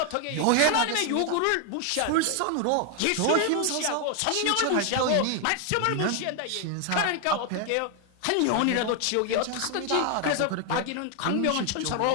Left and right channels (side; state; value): both; different; correlation 0.01